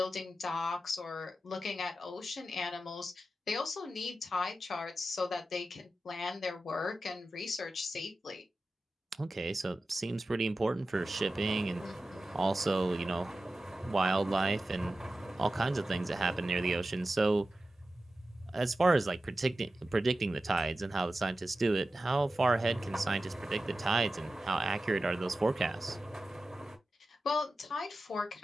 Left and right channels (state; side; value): normal; both; correlation 0.93